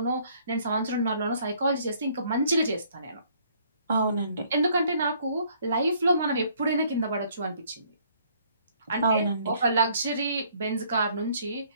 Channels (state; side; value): inverted; both; correlation -0.63